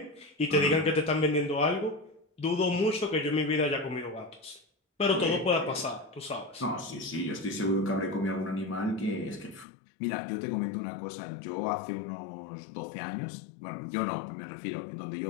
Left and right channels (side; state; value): right; drops out; at 9.7 s